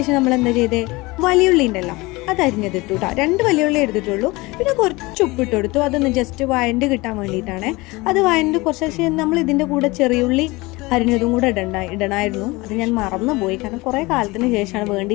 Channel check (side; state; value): right; quieter; 22.7 dB